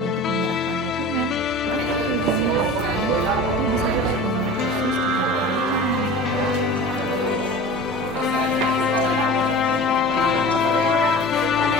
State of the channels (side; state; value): both; normal; correlation 0.37